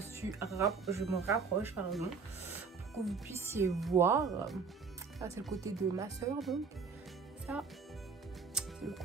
me rapproche, pardon, pour que vous puissiez voir. Ça, c'est le côté de ma soeur, donc. Ça, c'est le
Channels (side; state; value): left; quieter; 5.1 dB